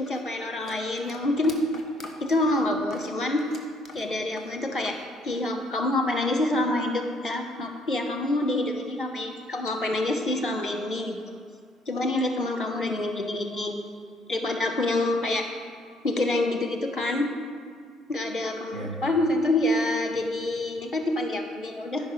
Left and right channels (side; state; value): both; normal; correlation 0.66